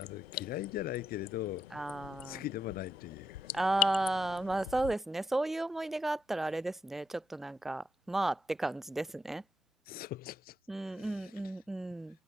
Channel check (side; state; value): both; normal; correlation 0.81